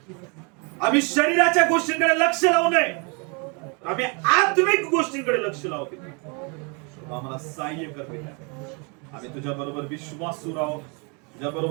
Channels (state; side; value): quieter; left; 33.5 dB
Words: आम्ही शरीराच्या गोष्टींकडे लक्ष लावू नये, आम्ही आत्मिक गोष्टींकडे लक्ष लावू. आम्हाला सहाय्य कर. आम्ही तुझ्या बरोबर विश्वासू राहू, तुझ्या